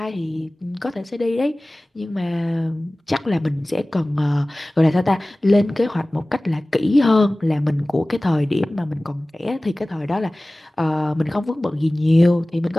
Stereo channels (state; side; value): normal; both; correlation 0.98